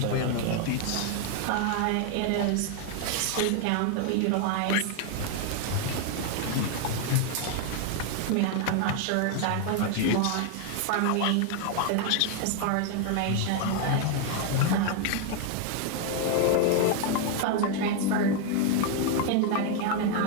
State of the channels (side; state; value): both; different; correlation 0.00